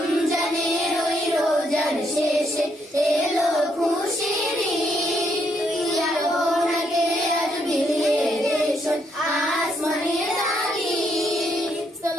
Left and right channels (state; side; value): normal; both; correlation 0.75